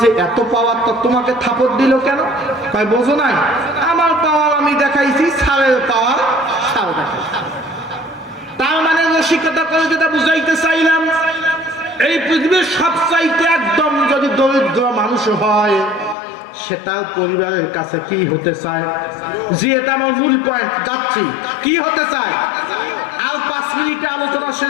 যে এত পাওয়ার, তো তোমাকে থাপড় দিল কেন? কয় বোঝো নাই, আমার পাওয়ার আমি দেখাইছি, স্যারের পাওয়ার স্যার দেখাইছি। তার মানে রসিকতা করে যেটা বুঝাইতে চাইলাম, এই পৃথিবীর সবচাইতে একদম যদি দরিদ্র মানুষ হয়, সে তার পরিবারের কাছে কি হতে চায়? যে এটা আমার মূল পয়েন্ট, যাচ্ছি, কি হতে চায়? আর 5 মিনিটে আলোচনা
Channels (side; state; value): right; drops out; at 16.2 s